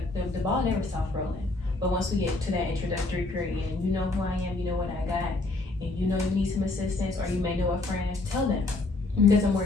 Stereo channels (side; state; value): right; quieter; 3.2 dB